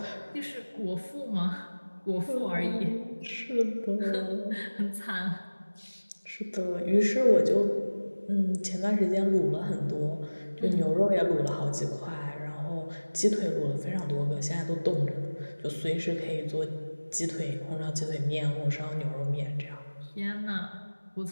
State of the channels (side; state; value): both; inverted; correlation -1.00